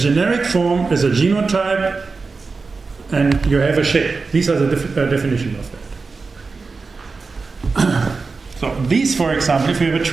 form is a genotype, and you have a shape. These are the definition of that. So these, for example, if you have a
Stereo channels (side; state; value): left; quieter; 4.3 dB